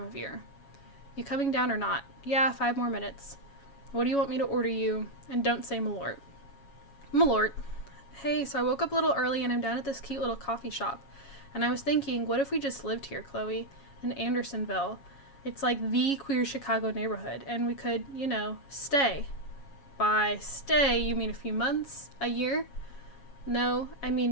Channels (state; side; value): late; right; 7.2 ms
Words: of year. You coming down or not? Yeah, 5 more minutes. What do you want me to order you? And don't say Malort. Malort. Hey, so I woke up a little early and I'm down at this cute little coffee shop. And I was thinking, what if we just lived here, Chloe? In Andersonville. It's like the queer Chicago neighborhood. And we could, you know, stay. By stay, you mean a few months? A year? No, I